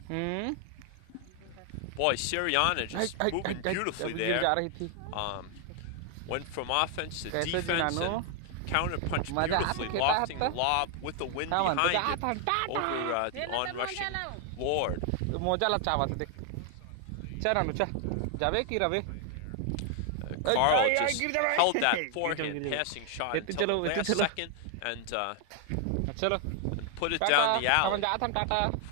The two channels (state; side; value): different; both; correlation 0.00